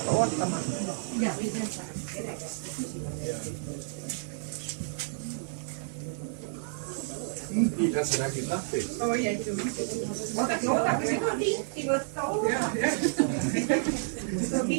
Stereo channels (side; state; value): left; silent; digital silence